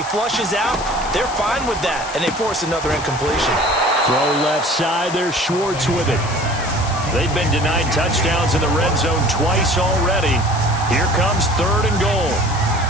flushes out, they're fine with that, and they force another incompletion. Throw left side. There's Schwartz with it. They've been denied touchdowns in the red zone twice already. Here comes 3rd and goal.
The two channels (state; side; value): noise; left; hiss, 12 dB below the sound